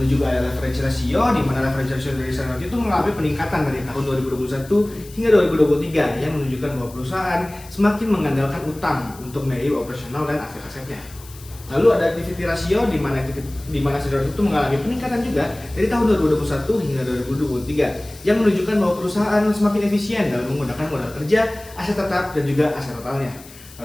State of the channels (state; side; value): noise; left; hiss, 20 dB below the sound